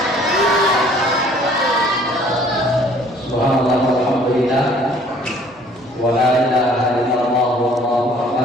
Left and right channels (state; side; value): normal; both; correlation 0.56